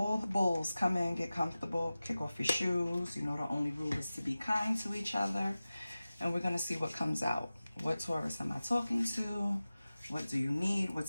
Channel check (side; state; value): both; inverted; correlation -0.96